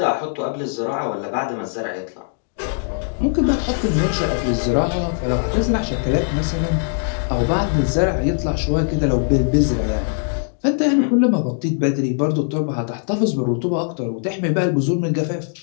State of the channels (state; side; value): silent; right; digital silence